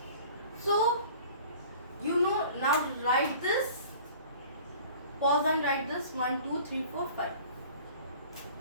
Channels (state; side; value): inverted; both; correlation -0.46